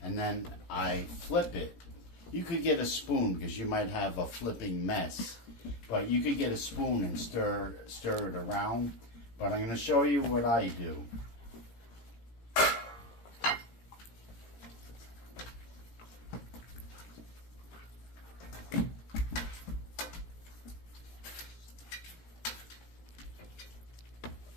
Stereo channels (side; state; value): right; late; 17 ms